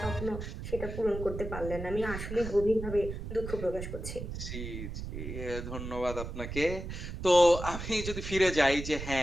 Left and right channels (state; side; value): noise; right; rumble, 7 dB below the sound